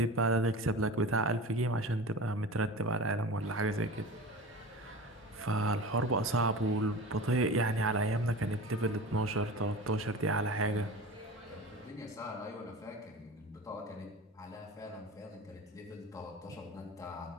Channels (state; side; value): normal; both; correlation 0.33